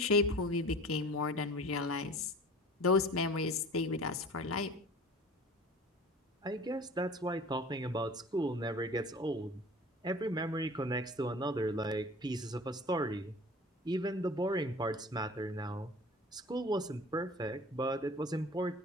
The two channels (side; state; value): both; normal; correlation 0.42